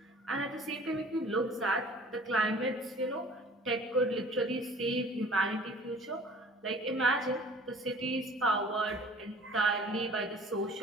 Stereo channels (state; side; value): normal; both; correlation 0.48